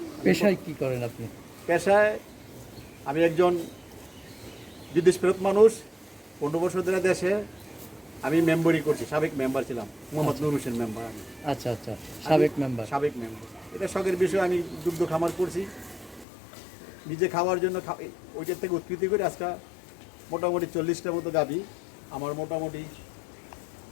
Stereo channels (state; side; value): drops out; right; at 16.2 s